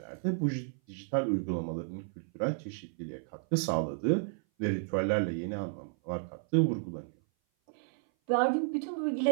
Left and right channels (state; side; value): silent; left; 56 dB below the other